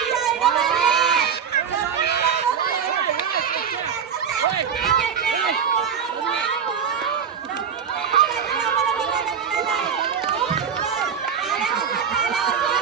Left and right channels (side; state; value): left; quieter; 7.4 dB